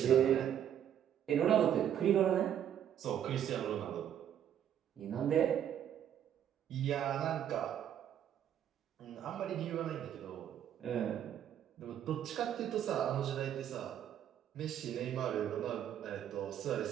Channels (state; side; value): quieter; left; 9.9 dB